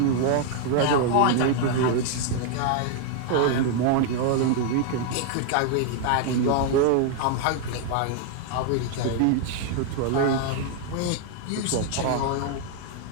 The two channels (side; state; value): both; different; correlation 0.00